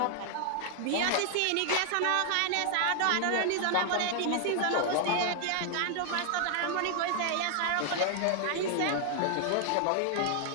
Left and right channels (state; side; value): different; both; correlation 0.00